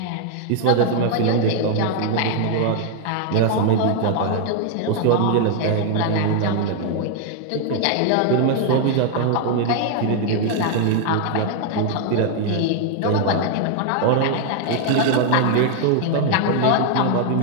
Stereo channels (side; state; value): both; different; correlation 0.00